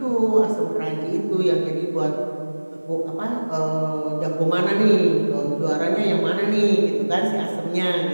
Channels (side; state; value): both; inverted; correlation -1.00